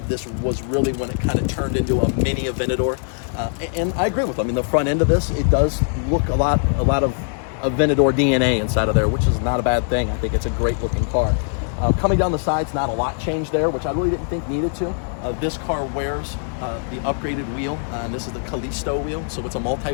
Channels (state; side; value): silent; right; 65 dB below the other